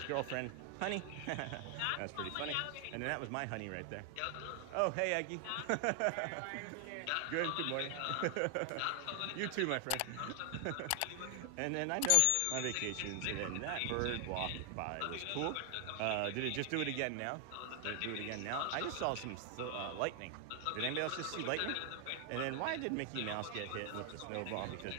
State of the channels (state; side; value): different; both; correlation 0.00